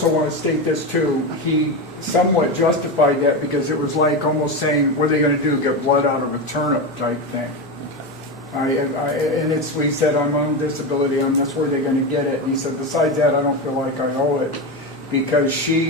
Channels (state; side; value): normal; both; correlation 0.17